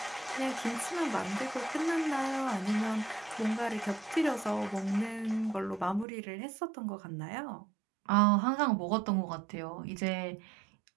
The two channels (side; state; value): left; drops out; at 6.1 s